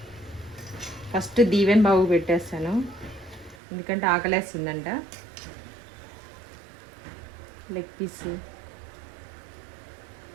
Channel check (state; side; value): drops out; left; at 3.6 s